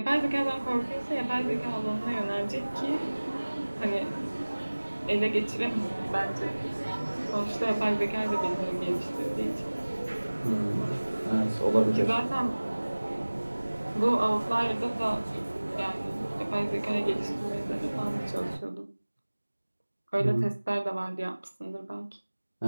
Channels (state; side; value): inverted; both; correlation -1.00